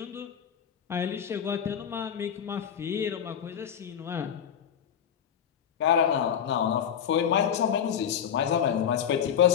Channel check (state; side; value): quieter; right; 8.6 dB